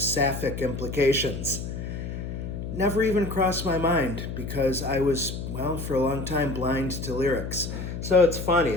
implications. Never even crossed my mind because I was, well, for a long time blind to lyrics. So it's funny,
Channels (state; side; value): noise; left; hum, 6 dB below the sound